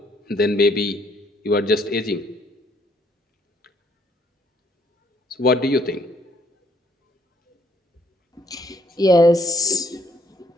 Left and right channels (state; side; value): normal; both; correlation 0.66